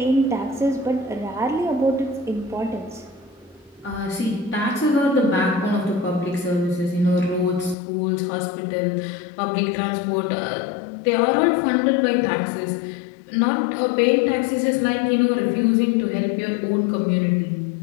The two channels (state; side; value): drops out; right; at 7.8 s